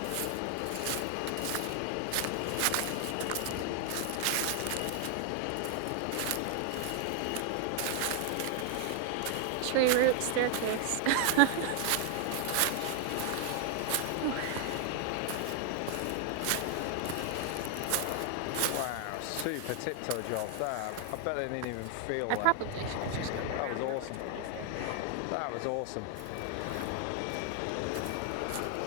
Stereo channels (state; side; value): different; both; correlation 0.00